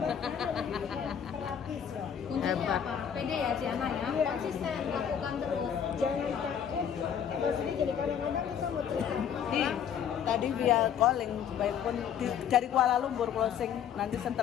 Kuncinya apa? Pede ya Ciana ya, konsisten lakukan terus. Jangan takut. Maksudnya jadi kadang-kadang kita mau cerita. Tadi via calling, baik pun dari Kuala Lumpur closing. Nanti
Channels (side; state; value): right; quieter; 8.5 dB